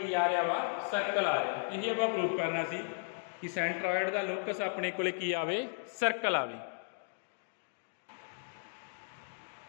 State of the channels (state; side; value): silent; right; digital silence